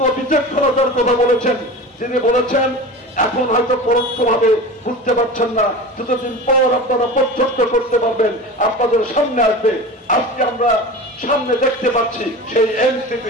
বিচক্ষণতার কথা বলেছেন। তিনি বলেছেন, এখন হয়তো পরোক্ষভাবে বুঝতে পারছেন না, কিছুদিন পর আপনারা প্রত্যক্ষ করতে পারবেন, আপনাদের সামনে আসবে। আজকে আমরা সামনে দেখতে পাচ্ছি সেই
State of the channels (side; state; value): both; normal; correlation 0.32